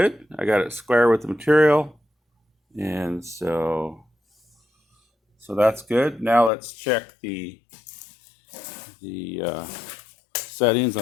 I got it square with the material, and so that's good. Now let's check the settings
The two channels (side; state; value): right; drops out; at 6.5 s